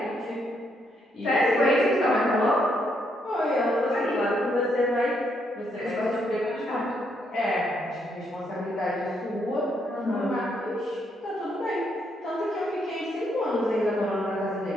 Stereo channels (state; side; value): normal; both; correlation 0.75